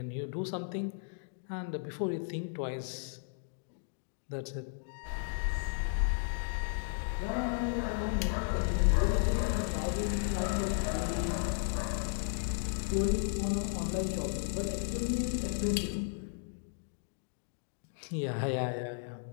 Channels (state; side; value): silent; right; digital silence